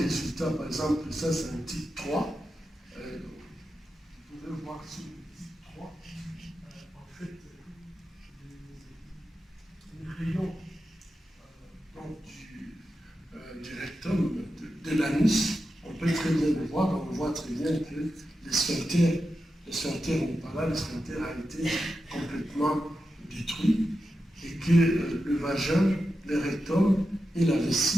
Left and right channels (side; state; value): both; normal; correlation 0.90